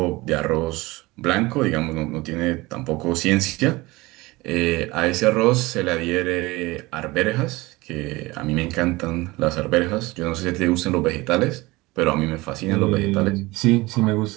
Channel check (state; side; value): quieter; left; 21.5 dB